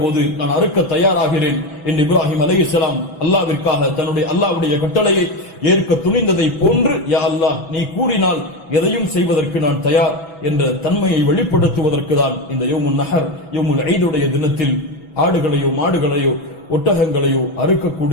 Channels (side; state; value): right; late; 6.1 ms